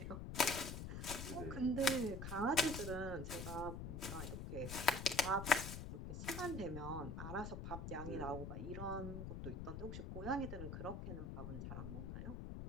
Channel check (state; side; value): noise; left; rumble, 6 dB below the sound